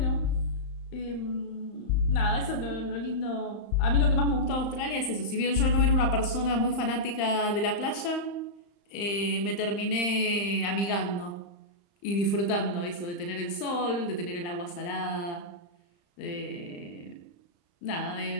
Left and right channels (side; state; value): right; late; 35 ms